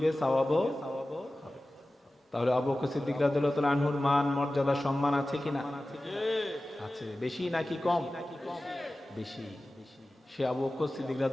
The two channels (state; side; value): normal; both; correlation 0.96